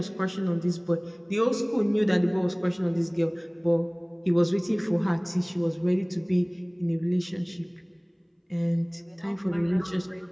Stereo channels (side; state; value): both; identical; correlation 1.00